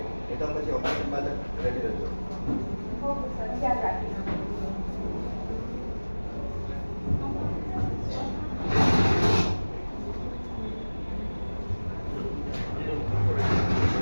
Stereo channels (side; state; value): both; inverted; correlation -1.00